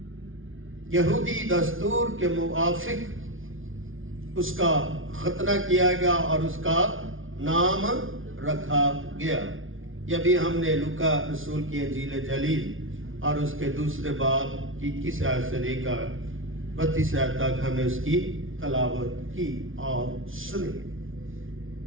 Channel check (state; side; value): late; left; 0.58 ms